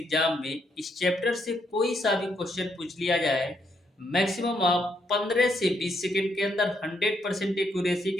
में इस चैप्टर से कोई सा भी क्वेश्चन पूछ लिया जाए, मैक्सिमम आप 15 से 20 सेकंड के अंदर 100% एक्यूरेसी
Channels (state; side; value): normal; both; correlation 0.75